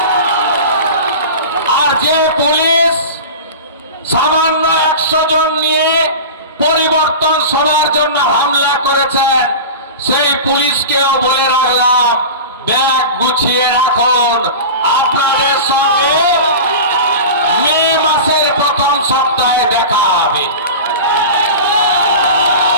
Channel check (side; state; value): both; inverted; correlation -0.31